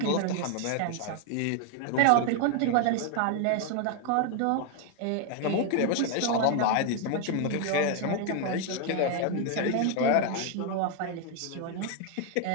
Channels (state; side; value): different; both; correlation 0.00